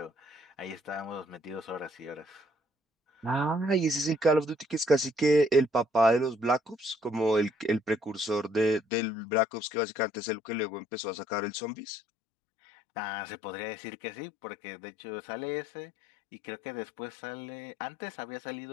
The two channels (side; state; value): right; drops out; at 8.8 s